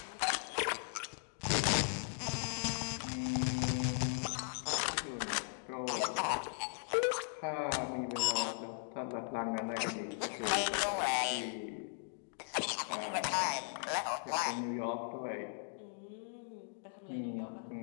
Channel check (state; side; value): silent; right; digital silence